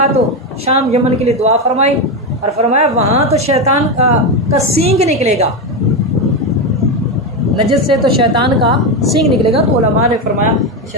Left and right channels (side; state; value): both; normal; correlation 0.11